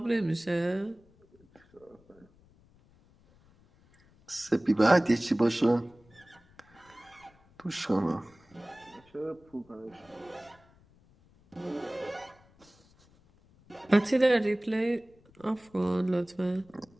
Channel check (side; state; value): left; noise; rumble, 29 dB below the sound